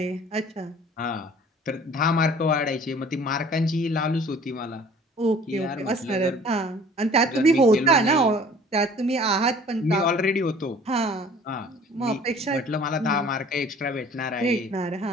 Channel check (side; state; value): both; normal; correlation 0.50